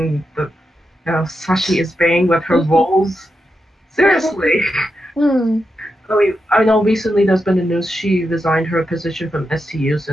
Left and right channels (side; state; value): both; normal; correlation 0.86